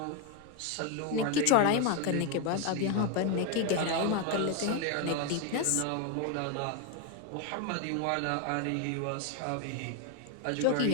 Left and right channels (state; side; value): different; both; correlation 0.01